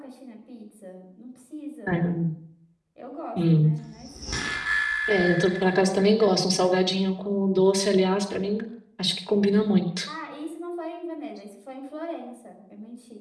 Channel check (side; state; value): both; identical; correlation 1.00